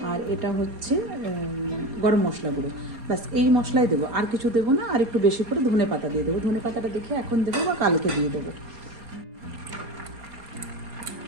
আর এটা হচ্ছে গরম মশলা গুঁড়ো। ব্যাস এই মশলাই দেবো, আর কিছু দেবো না। আর একটু বেশি করে ধনে পাতা দিয়ে দেবো, ধনে পাতাটা দেখে এখন দেবো বা কালকে দিয়ে দেবো।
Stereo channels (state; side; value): late; left; 4.2 ms